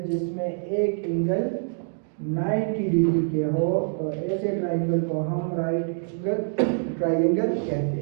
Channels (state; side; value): silent; left; digital silence